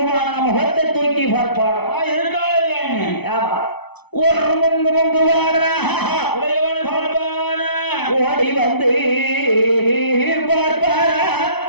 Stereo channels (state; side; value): late; right; 0.98 ms